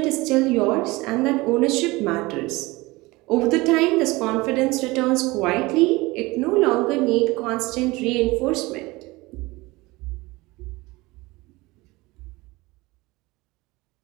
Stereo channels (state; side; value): quieter; left; 21.9 dB